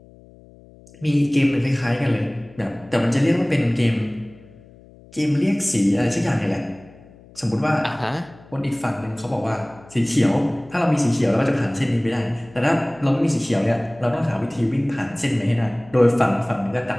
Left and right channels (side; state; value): left; noise; hum, 24 dB below the sound